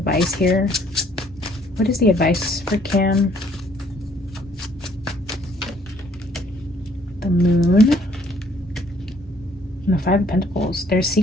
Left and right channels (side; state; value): both; normal; correlation 0.62